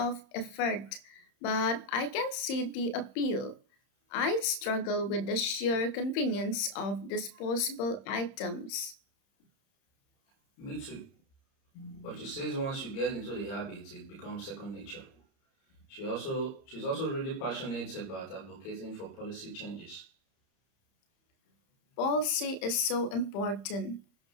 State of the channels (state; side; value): late; right; 30 ms